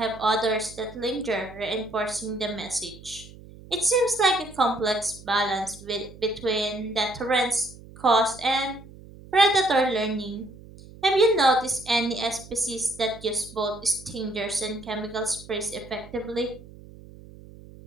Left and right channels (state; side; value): noise; right; hum, 19 dB below the sound